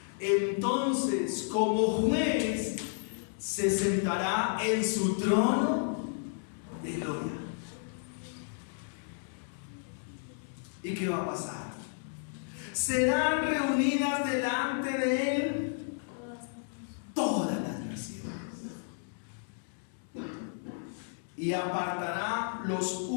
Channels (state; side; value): silent; right; digital silence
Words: entonces como juez se sentará en su trono de gloria. ¿Y qué va a pasar? Serán reunidas delante de él todas las naciones, y apartará los